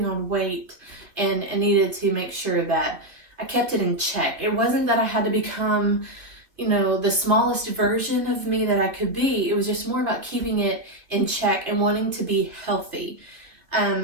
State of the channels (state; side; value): late; left; 2.5 ms